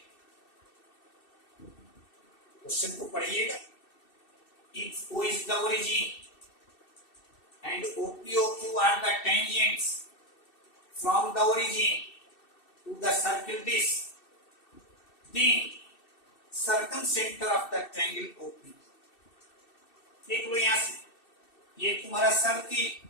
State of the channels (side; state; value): right; late; 2.6 ms